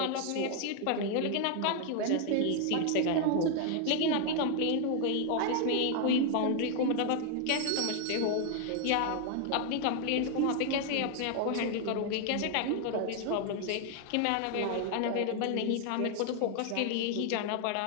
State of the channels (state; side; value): different; both; correlation 0.00